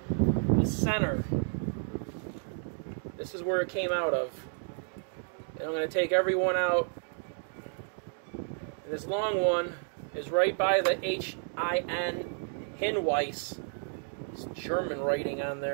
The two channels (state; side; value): silent; left; 57 dB below the other